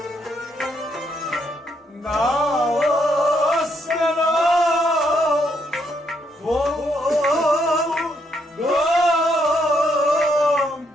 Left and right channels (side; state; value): both; normal; correlation 0.75